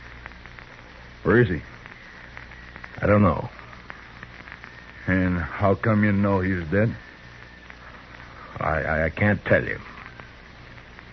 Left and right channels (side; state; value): both; identical; correlation 1.00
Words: Where is he? I don't know. And how come you know he's dead? I can't tell you.